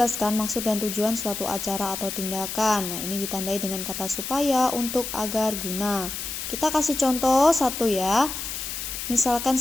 maksud dan tujuan suatu acara atau tindakan. Nah, ini ditandai dengan kata supaya, untuk, agar, guna. Kita kasih contoh satu ya. Misalkan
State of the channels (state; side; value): noise; left; hiss, 6 dB below the sound